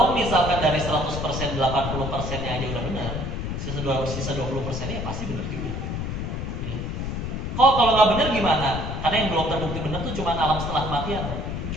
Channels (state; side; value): noise; left; rumble, 4 dB below the sound